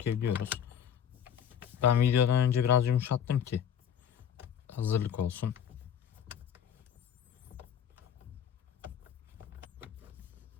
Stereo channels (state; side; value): quieter; right; 8.7 dB